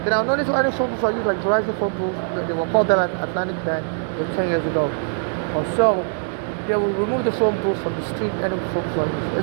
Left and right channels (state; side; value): silent; left; digital silence